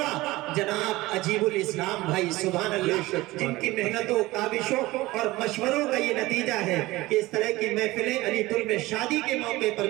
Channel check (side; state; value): left; quieter; 19.3 dB